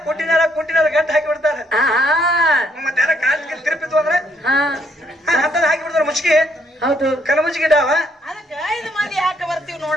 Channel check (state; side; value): normal; both; correlation 0.70